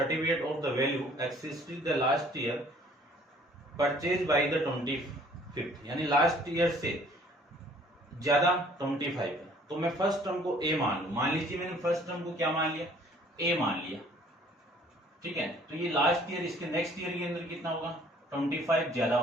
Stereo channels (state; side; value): normal; both; correlation 0.56